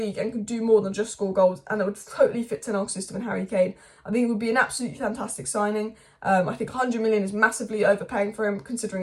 and can do more than just score goals, and it would totally fit Ten Hag's system and Harry Kane. I think it would be an absolutely fantastic signing. I think 100 million is massively overpaying for him considering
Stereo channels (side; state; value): both; identical; correlation 1.00